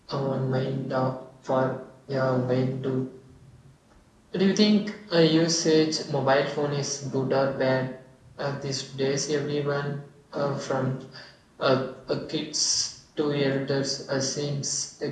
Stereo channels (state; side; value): identical; both; correlation 1.00